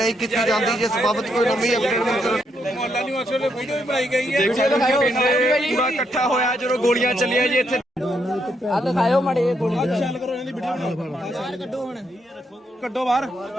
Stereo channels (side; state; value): both; normal; correlation 0.77